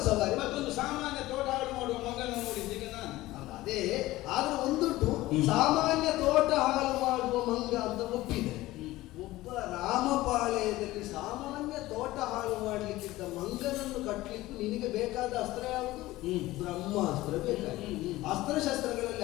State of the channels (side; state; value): right; quieter; 17.6 dB